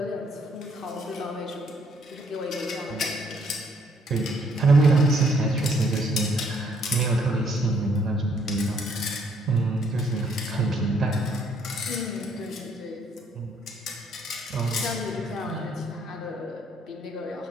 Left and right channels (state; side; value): normal; both; correlation 0.66